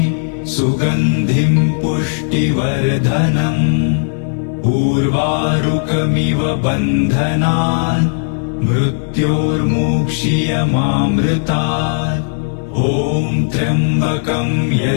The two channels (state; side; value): silent; right; digital silence